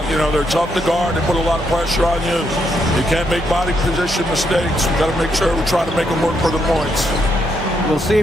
you know, they're tough to guard. They put a lot of pressure on you. You can't make body position mistakes. We've got to make sure we try to make them work for the points. We'll see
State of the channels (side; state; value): both; normal; correlation 0.77